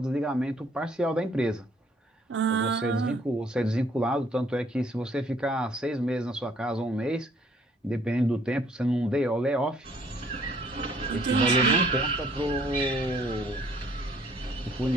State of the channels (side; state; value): both; normal; correlation 0.62